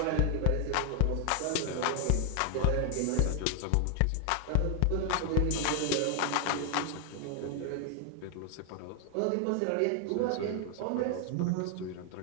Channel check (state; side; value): different; both; correlation 0.00